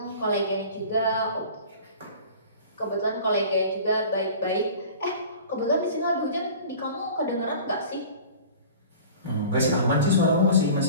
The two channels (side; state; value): both; inverted; correlation -0.42